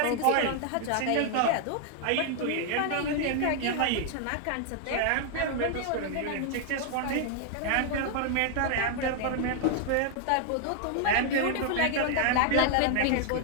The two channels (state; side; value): different; both; correlation 0.00